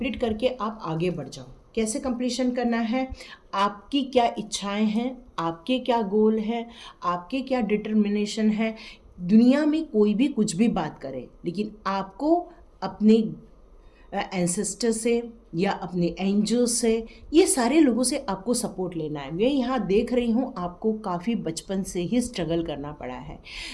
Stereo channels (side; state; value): both; identical; correlation 1.00